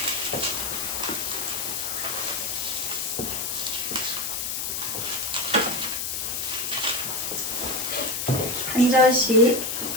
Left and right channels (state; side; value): noise; left; hiss, 2 dB below the sound